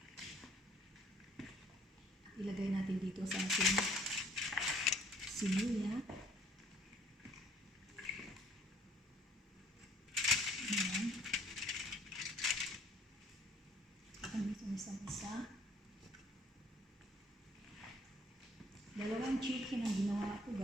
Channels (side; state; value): both; normal; correlation 0.59